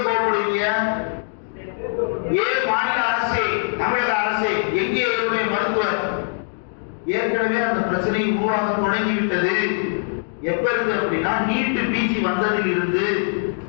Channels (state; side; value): silent; right; digital silence